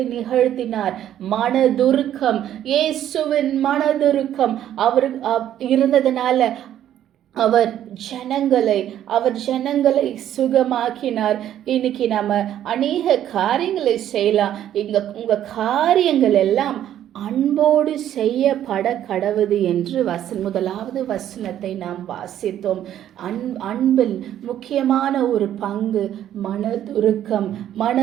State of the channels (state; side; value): quieter; left; 11.2 dB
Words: நிகழ்த்தினார்? மனதுருக்கம். இயேசுவின் மனதுருக்கம் அவர் இருந்ததனால அவர் ஜனங்களை சுகமாக்கினார். இன்னைக்கு நம்ம அநேக காரியங்களை செய்யலாம். உங்க காரியங்கள் எல்லாம் அன்போடு செய்யப்பட கடவுது என்று முதலாவது வசனத்தை நாம் வாசித்தோம். அன்பில் முக்கியமான ஒரு பங்கு மனதுருக்கம்.